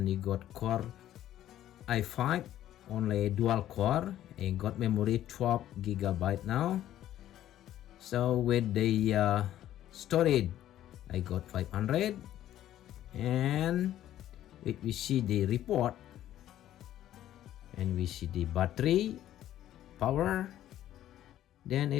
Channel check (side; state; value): right; quieter; 12.5 dB